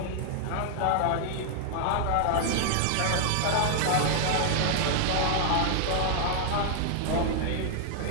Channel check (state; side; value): different; both; correlation 0.00